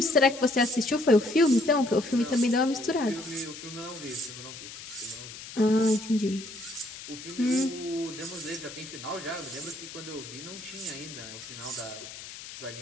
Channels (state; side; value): noise; left; hiss, 13 dB below the sound